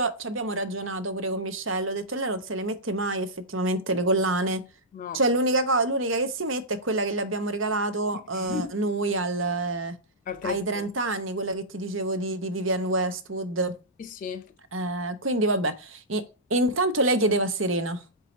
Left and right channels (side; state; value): both; normal; correlation -0.13